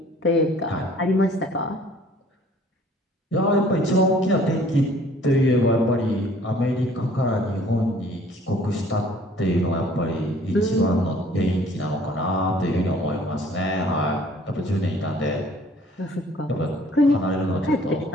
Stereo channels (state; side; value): normal; both; correlation 0.55